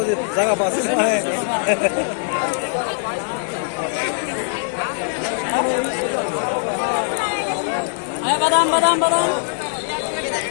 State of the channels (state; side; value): silent; right; 65 dB below the other